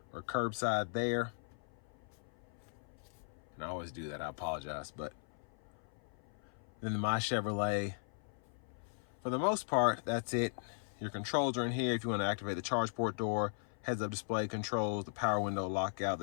or curbside there. And I always do that, I apologize. But then the My Chevrolet, for the most part, that's it. Your controls are in here if you want to activate the charge port door, heads-up display controls, the power window lockout,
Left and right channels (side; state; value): right; silent; 52 dB below the other